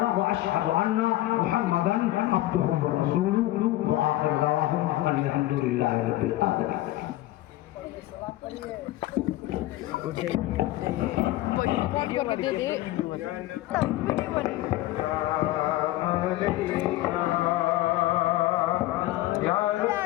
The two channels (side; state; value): right; quieter; 16.3 dB